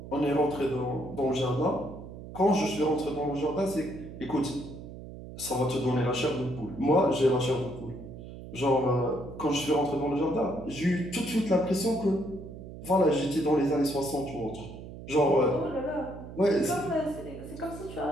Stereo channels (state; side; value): noise; right; hum, 13 dB below the sound